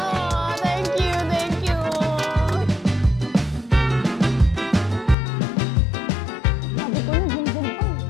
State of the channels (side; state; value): right; drops out; at 5.2 s